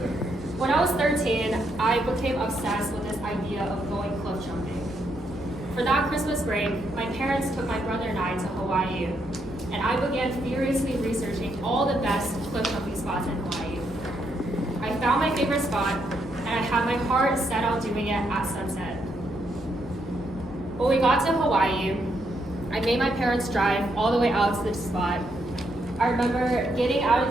When I was 13, I became obsessed with this idea of going cliff jumping. For that Christmas break, my parents took my brother and I to Hawaii, and I began furiously researching all the best cliff jumping spots in Hawaii. I found my favorite spot, and I had my heart set on doing it at sunset. When we got to Hawaii, I made my parents drive all the way out to this spot. I remember getting out of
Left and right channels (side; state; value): both; normal; correlation 0.77